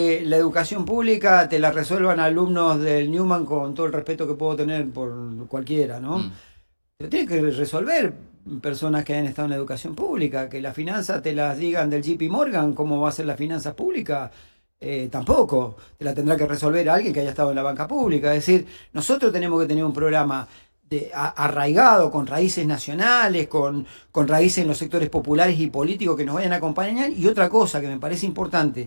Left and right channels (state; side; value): inverted; both; correlation -1.00